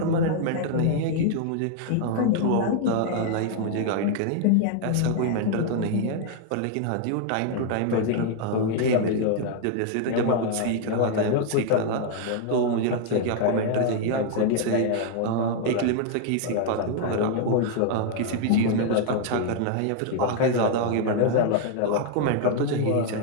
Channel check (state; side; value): different; both; correlation 0.00